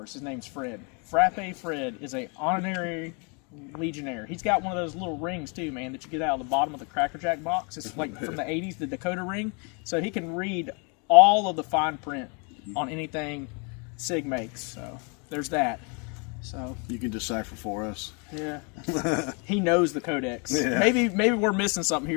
us. His name's Fred. Frappe Fred is a honorary Legionnaire. He's got one of those little rings, too, man, that you get out of the bottom of the Cracker Jack box. It's like from the 80s, the Dakota ring. So he can read all of the fine print on anything SIG makes. So there's that. So you can decipher for us. Yeah. He knows the codex. Yeah. Maybe we're missing something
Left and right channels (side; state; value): right; quieter; 34.7 dB